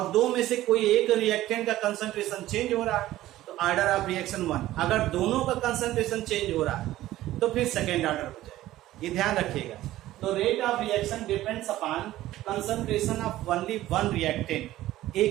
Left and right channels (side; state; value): left; quieter; 15.1 dB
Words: दो में से कोई एक रिएक्टेंट का कंसंट्रेशन चेंज हो रहा है तो ऑर्डर ऑफ रिएक्शन 1। अगर दोनों का कंसंट्रेशन चेंज हो रहा है तो फिर सेकेंड ऑर्डर हो जाएगा, ये ध्यान रखिएगा। तो rate of reaction depends upon concentration of only one reactant,